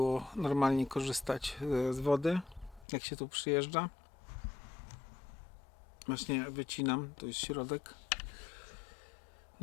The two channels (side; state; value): right; drops out; at 2.9 s